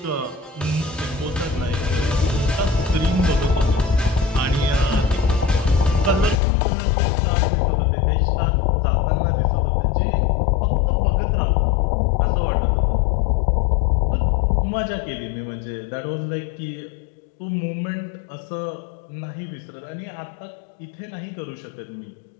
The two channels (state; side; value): drops out; right; at 6.4 s